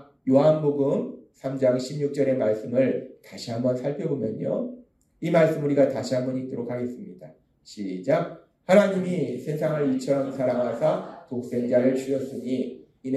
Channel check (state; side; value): identical; both; correlation 1.00